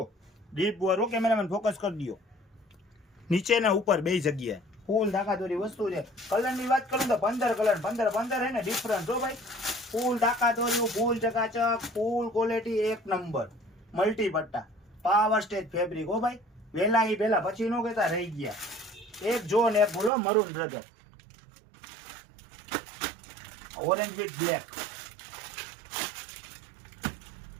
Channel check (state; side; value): drops out; left; at 20.1 s